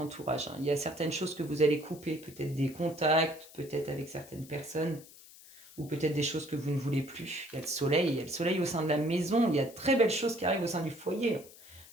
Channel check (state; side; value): noise; left; hiss, 20 dB below the sound